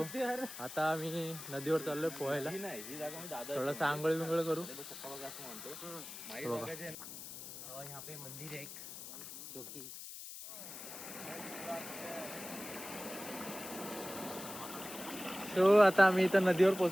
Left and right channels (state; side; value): noise; left; hiss, 11 dB below the sound